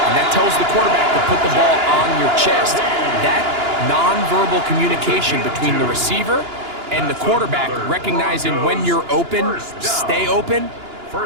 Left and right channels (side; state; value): left; late; 2.9 ms